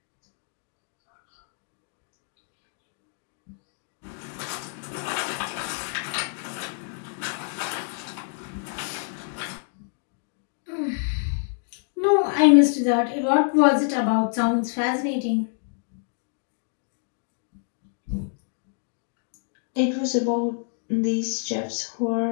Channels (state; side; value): silent; right; 58 dB below the other